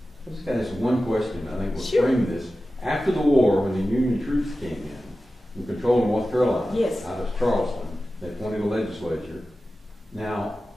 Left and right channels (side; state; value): both; normal; correlation 0.94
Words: I just got this one question. I think we'll Sure. frame this. After the war, when the Union troops came in and controlled North Carolina, Yes. out of Charleston, they appointed a legislature. Now,